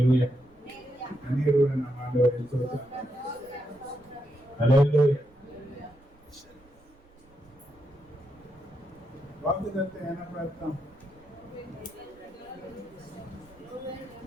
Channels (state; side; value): noise; right; rumble, 28 dB below the sound